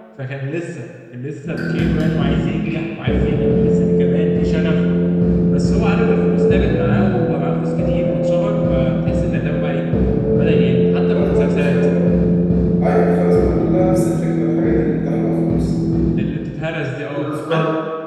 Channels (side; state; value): both; identical; correlation 1.00